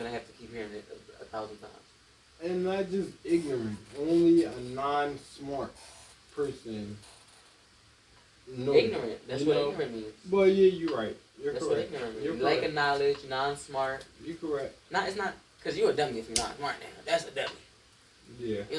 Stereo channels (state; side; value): identical; both; correlation 1.00